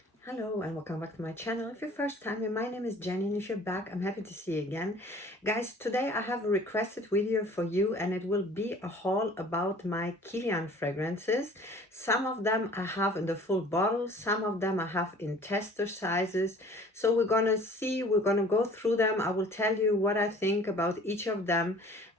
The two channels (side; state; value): both; normal; correlation 0.49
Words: Hello and welcome back to my channel. If you're first time here, my name is Jenny, and if you're back, I'm happy to see you again. Guys, today I have a requested video for you, and it will be a haul about my KILIAN fragrances. Some of them I have in the full bottle, some of them I have in tester sizes. So we're gonna go through them. I will tell you what I think about each of them.